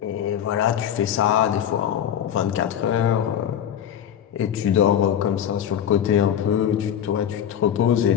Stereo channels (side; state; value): right; quieter; 9.5 dB